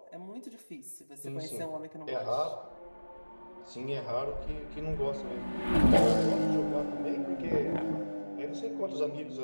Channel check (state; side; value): inverted; both; correlation -1.00